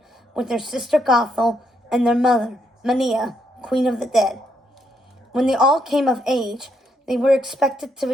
with their sister Gothel and their mother, Mania, Queen of the Dead. When they all came of age, they were expected to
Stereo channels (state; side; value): normal; both; correlation 0.76